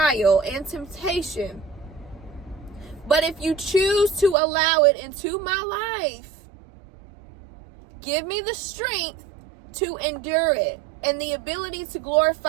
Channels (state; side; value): drops out; left; at 4.4 s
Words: and temptation. But if you choose to allow it into my life, give me the strength to endure it and the ability to